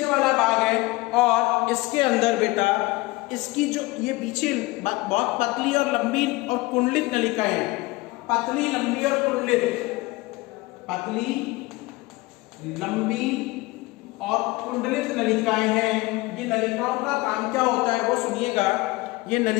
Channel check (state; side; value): quieter; right; 21.6 dB